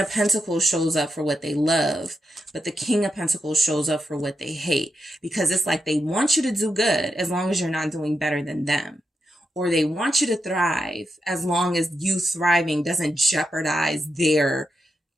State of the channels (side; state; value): both; normal; correlation 0.85